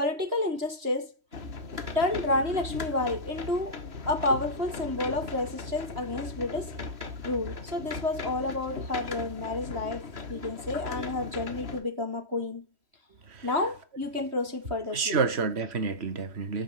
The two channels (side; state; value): left; late; 3.1 ms